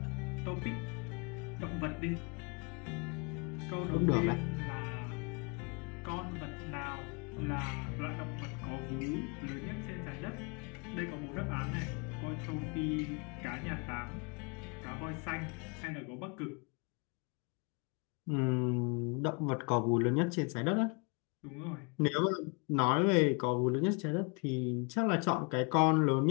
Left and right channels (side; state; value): right; quieter; 32.9 dB